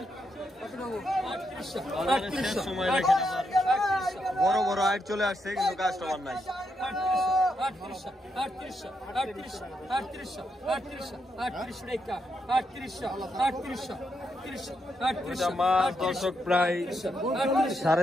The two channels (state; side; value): normal; both; correlation 0.81